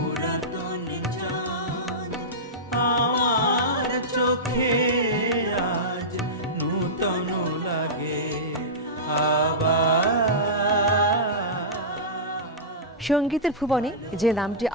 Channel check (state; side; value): normal; both; correlation -0.15